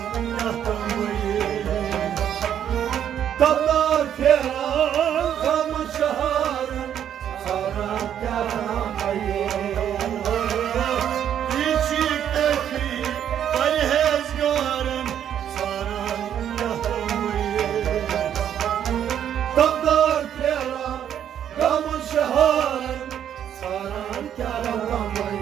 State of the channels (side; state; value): left; quieter; 9.7 dB